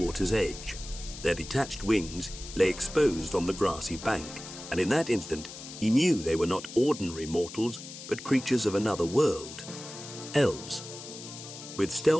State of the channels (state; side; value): noise; left; hiss, 13 dB below the sound